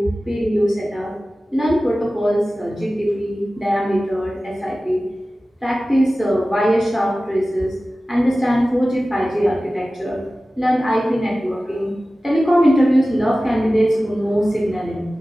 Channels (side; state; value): both; normal; correlation 0.96